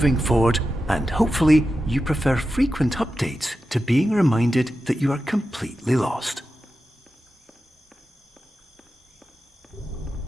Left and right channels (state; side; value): normal; both; correlation 0.91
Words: forward, and hopefully you prefer frequent updates to being reminded that you are completely lost.